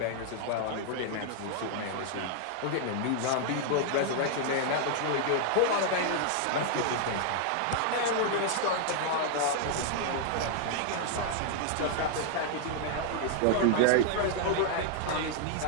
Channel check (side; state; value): both; different; correlation 0.00